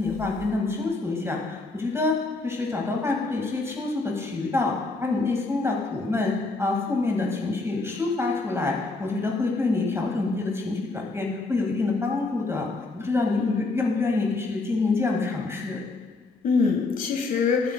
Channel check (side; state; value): right; quieter; 3.4 dB